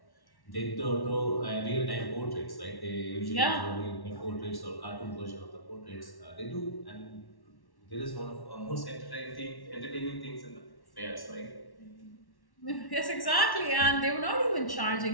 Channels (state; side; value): late; right; 1.1 ms